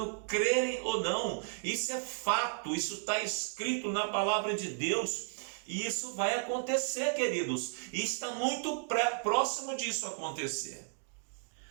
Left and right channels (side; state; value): left; silent; 55 dB below the other